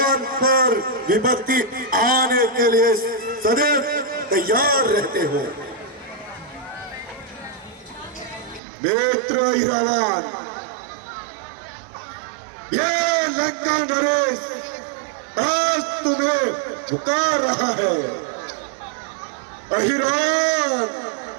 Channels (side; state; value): left; drops out; at 8.6 s